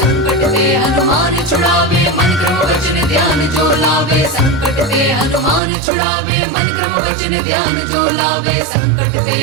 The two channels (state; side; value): drops out; left; at 5.6 s